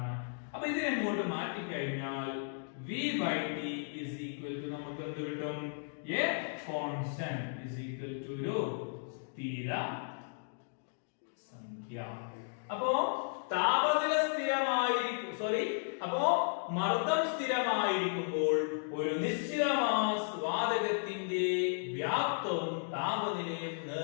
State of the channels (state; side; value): silent; right; digital silence